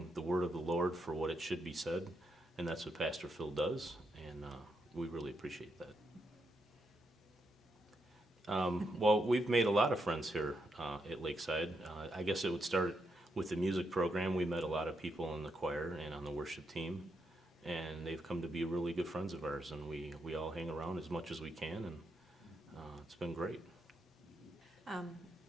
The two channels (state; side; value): normal; both; correlation 0.81